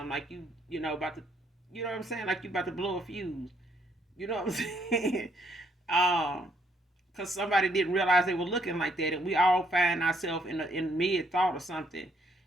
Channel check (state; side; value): normal; both; correlation 0.69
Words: Like about to, you know what I'm saying? Like you about to blow a fuse. You know what I'm saying? um, because somebody didn't realize they were looking like that, and we all find ourselves in mid thought or something,